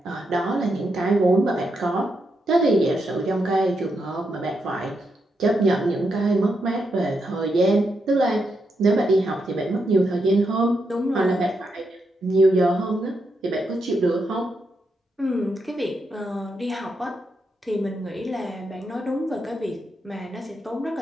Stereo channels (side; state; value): both; normal; correlation 0.82